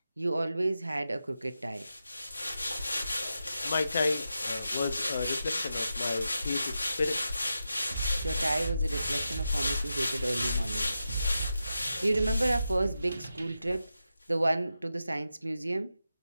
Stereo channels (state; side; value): inverted; both; correlation -0.89